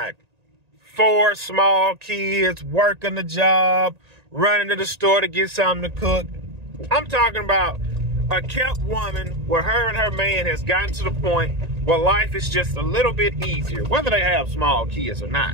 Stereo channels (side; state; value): left; late; 1.9 ms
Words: 4 small kids, working the job, running to the store to get something to cook. I'm talking about a kept woman where her and her man has gotten to the point where life is just a little bit easier, whether they have small kids or not.